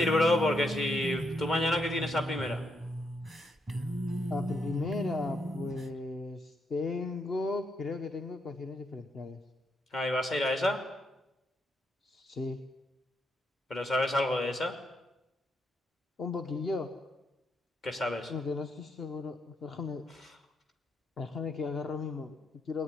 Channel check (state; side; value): normal; both; correlation 0.78